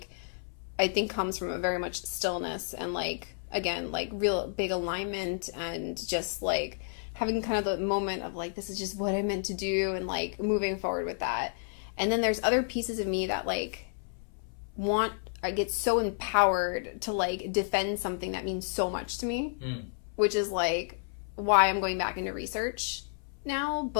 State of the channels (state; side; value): silent; right; 57 dB below the other